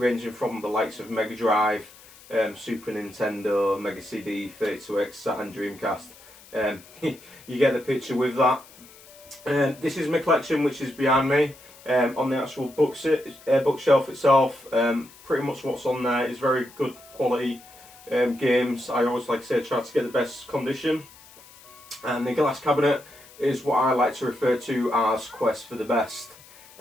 from the likes of Mega Drive, Super Nintendo, Mega CD, 32X, Saturn, Dreamcast. You get the picture with that. This is my collection, which is behind me. On the actual bookshelf itself, pretty much what's on there is very good quality games. I always, like I say, try to get the best condition. And the glass cabinet is what I like to refer to as Quest for the Best.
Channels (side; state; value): left; noise; hiss, 23 dB below the sound